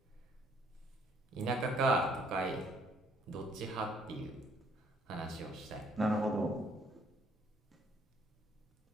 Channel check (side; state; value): both; normal; correlation 0.64